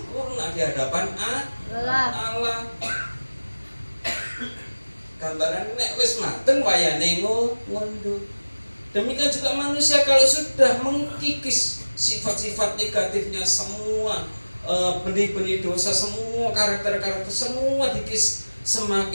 di hadapan Allah. Gambaran nek wis mateng wayane ngunduh. Demikian juga manusia kalau sudah mengkikis sifat-sifat negatifnya semua, benih-benih dosa semua, karakter-karakter semua dikikis,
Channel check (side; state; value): both; inverted; correlation -1.00